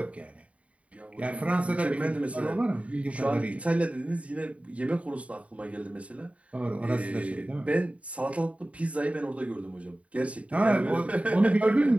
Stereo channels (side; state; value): left; late; 0.065 ms